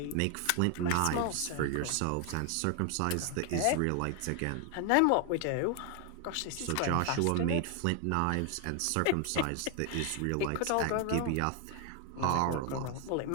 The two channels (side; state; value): both; different; correlation 0.00